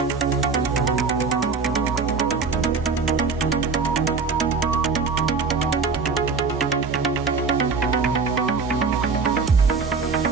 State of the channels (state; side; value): quieter; left; 4.8 dB